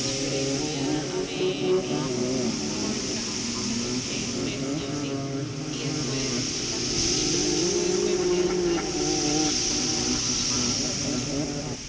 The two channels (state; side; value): identical; both; correlation 1.00